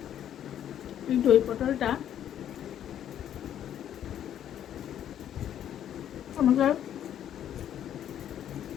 এই দই পটলটা আমাকে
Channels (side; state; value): right; quieter; 10.4 dB